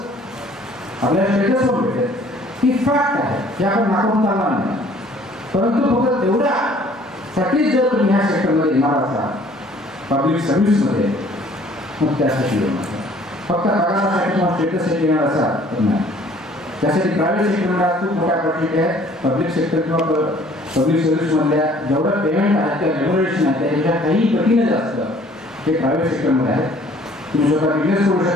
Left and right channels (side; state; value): both; normal; correlation 0.56